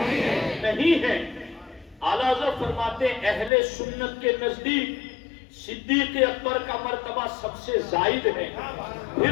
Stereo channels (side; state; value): right; drops out; at 3.5 s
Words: نہیں ہے۔ اعلیٰ حضرت فرماتے ہیں اہل سنت کے نزدیک صدیق اکبر کا مرتبہ سب سے زائد ہے،